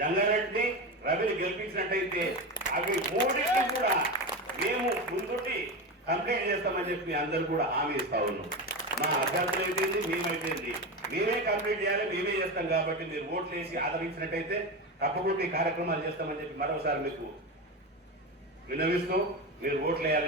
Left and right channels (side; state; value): both; normal; correlation 0.20